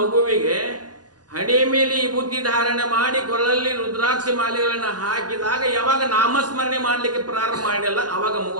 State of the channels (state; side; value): late; left; 0.69 ms